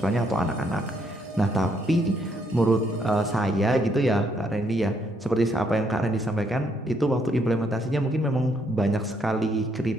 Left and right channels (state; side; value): normal; both; correlation 0.72